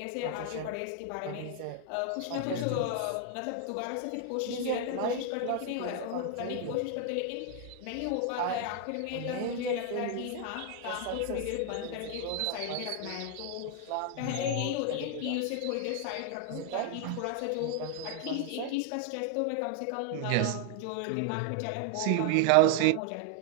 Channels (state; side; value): different; both; correlation 0.00